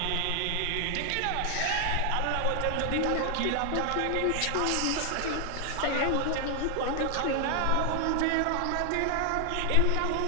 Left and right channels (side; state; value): both; different; correlation 0.00